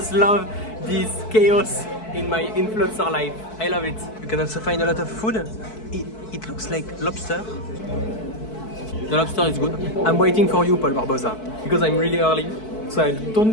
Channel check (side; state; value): right; late; 4.6 ms